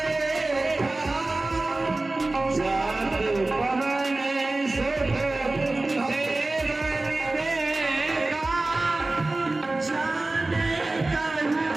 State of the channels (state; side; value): quieter; left; 3.0 dB